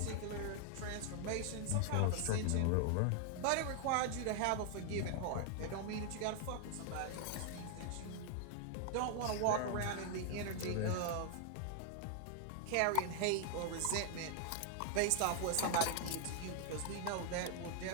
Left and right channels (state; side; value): different; both; correlation 0.00